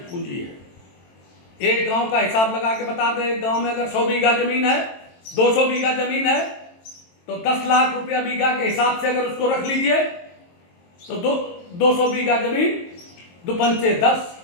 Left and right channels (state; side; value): late; right; 22 ms